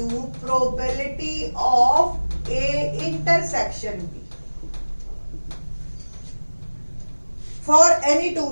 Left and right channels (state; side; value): inverted; both; correlation -1.00